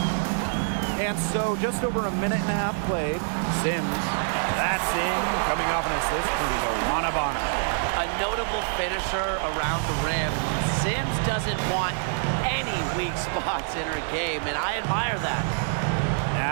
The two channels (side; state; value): left; silent; digital silence